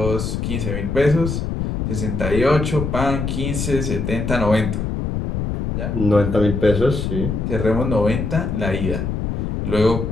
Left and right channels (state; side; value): noise; left; rumble, 2 dB below the sound